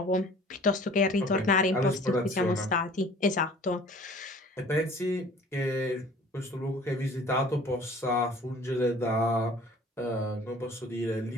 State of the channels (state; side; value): normal; both; correlation 0.49